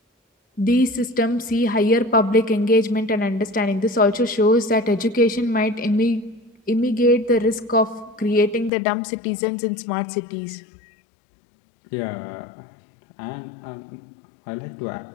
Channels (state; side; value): drops out; right; at 8.7 s